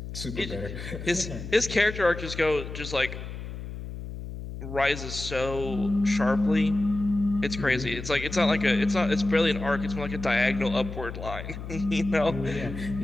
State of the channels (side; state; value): left; noise; hum, 9 dB below the sound